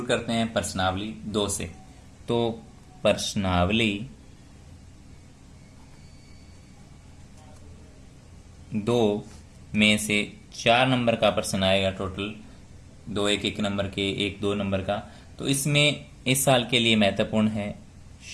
करते हैं प्रश्नावली 2 से। तो प्रश्नावली 2 में से 4 नंबर का प्रश्न आएगा। टोटल 2 1 नंबर के, 1 2 नंबर का। तो इसमें इस साल के लिए महत्वपूर्ण है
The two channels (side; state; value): both; identical; correlation 1.00